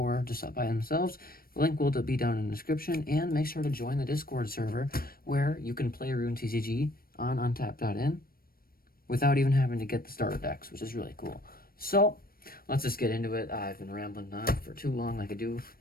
just up by themselves, the link will be down in the description. And make sure to join the Discord server where you can play Rune TCG on untap.in without even having to get the starter decks, which is really cool. So let's just get into it. I've been rambling on for too long, like I do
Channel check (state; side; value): late; right; 0.43 ms